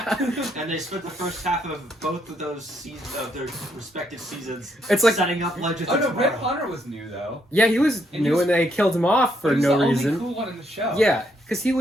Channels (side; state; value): both; normal; correlation 0.74